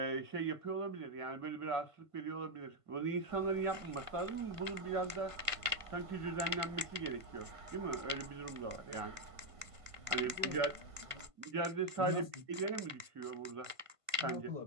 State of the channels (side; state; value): left; late; 1.5 ms